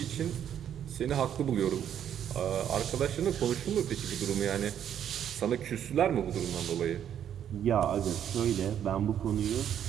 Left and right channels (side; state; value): left; quieter; 9.6 dB